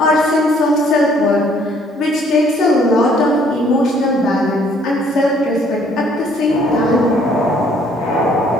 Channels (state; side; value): normal; both; correlation 0.62